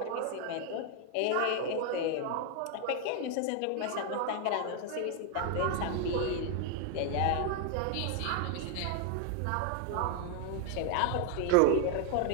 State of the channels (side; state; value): both; different; correlation 0.01